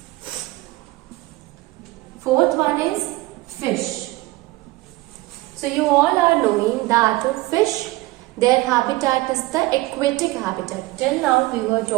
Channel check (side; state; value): left; quieter; 19.7 dB